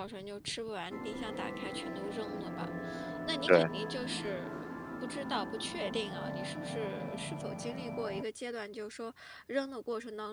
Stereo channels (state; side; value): identical; both; correlation 1.00